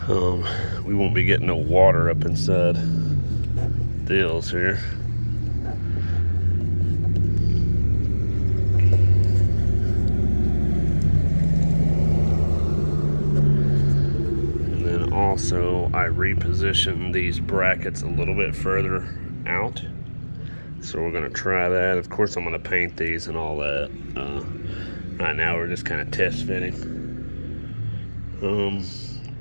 we won't be getting no water up inside the hills here. And then also I repositioned these brackets a little bit further out. So we're gonna try that. Of course I'm gonna paint these and all that. Right now we're just kind of test fitting.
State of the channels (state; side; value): inverted; both; correlation -1.00